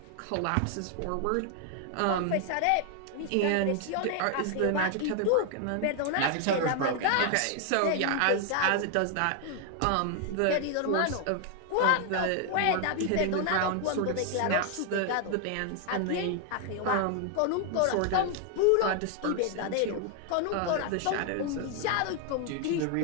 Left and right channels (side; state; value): both; different; correlation 0.00